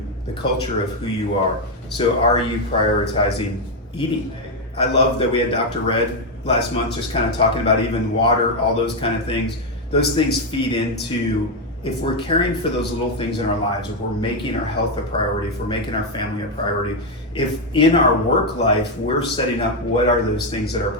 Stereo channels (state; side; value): normal; both; correlation 0.04